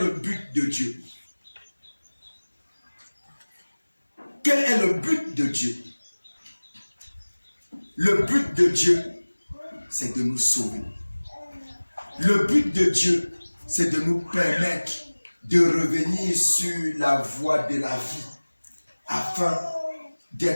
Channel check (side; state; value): both; inverted; correlation -1.00